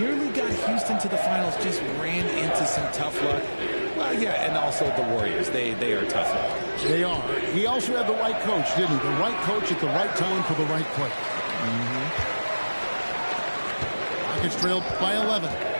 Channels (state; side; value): inverted; both; correlation -1.00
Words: got Houston to the finals, just ran into some tough luck. Well, yeah, and also the Warriors. They are tough luck. They are. He also had the right coach, didn't he? The right coach at the right time for the right play. Rockets trailed by 11.